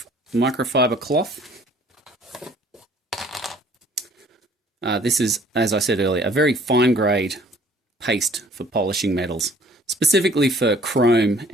microfiber cloth. This is, as I said earlier, a very fine grade paste for polishing metals. Specifically for chrome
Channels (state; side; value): normal; both; correlation 0.56